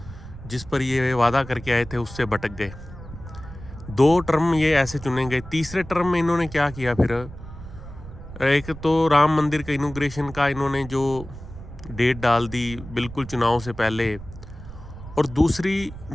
जिस पर ये वादा करके आए थे उससे भटक गए। 2 टर्म ये ऐसे चुने गए। तीसरे टर्म में इन्होंने क्या किया, फिर एक तो राम मंदिर का इनॉग्रेशन का इन्होंने जो डेट डाल दी बिल्कुल चुनाव से पहले, और दूसरी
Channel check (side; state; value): right; noise; rumble, 14 dB below the sound